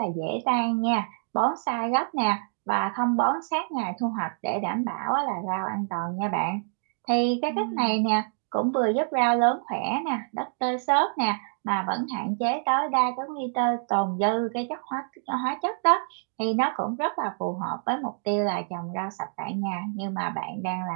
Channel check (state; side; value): silent; left; 60 dB below the other